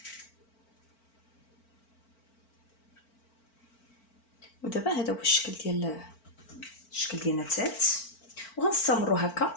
ودابا هذا هو الشكل ديالنا الثالث، وغنستمروا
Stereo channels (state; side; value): late; right; 4.4 ms